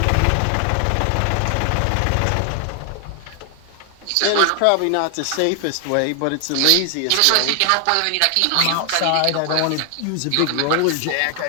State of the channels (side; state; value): both; different; correlation 0.00